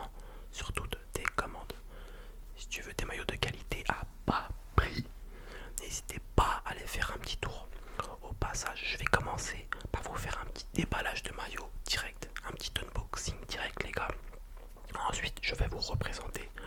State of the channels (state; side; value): identical; both; correlation 1.00